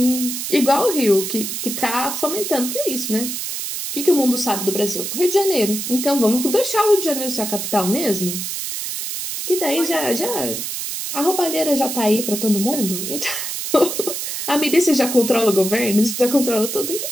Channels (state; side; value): noise; right; hiss, 4 dB below the sound